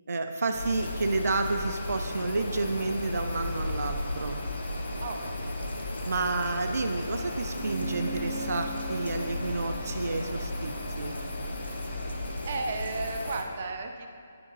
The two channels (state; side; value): inverted; both; correlation -0.81